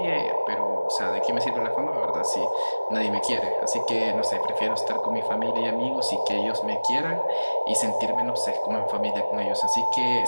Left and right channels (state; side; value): inverted; both; correlation -1.00